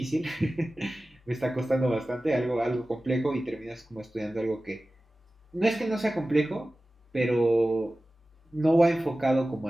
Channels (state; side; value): normal; both; correlation 0.96